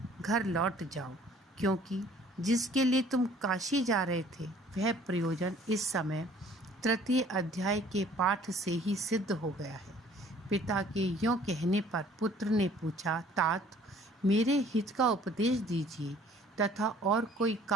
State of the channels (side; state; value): both; normal; correlation 0.55